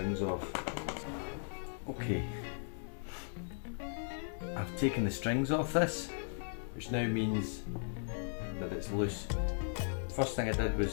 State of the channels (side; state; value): right; silent; digital silence